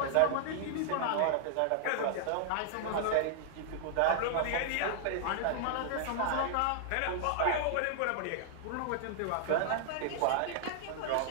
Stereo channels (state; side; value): different; both; correlation -0.01